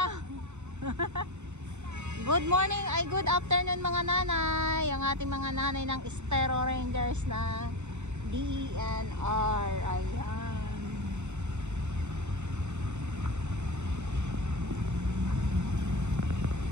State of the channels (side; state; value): left; late; 0.83 ms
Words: Good morning, ay good afternoon mga nanay. Ang ating mga nanay ng Estero Rangers na DENR. Ayan.